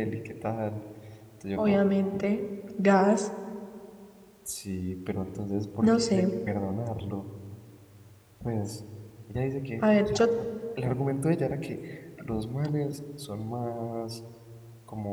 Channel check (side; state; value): both; identical; correlation 1.00